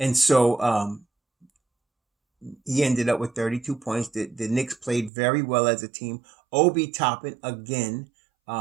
so, he ended up with 32 points. The Knicks played very well as a team. Obi Toppin, again,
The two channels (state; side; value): drops out; left; at 5.1 s